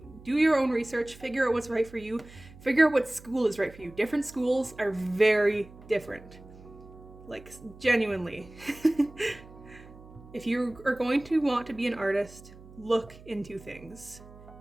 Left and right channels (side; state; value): right; noise; hum, 20 dB below the sound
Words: do your own research, figure out what's right for you, figure out what school is right for you. Different schools are very different. Like, genuinely. If you are going to want to be an artist, look into things.